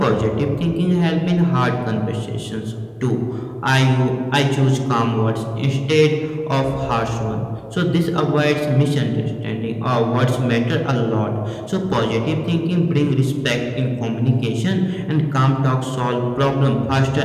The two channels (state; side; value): identical; both; correlation 1.00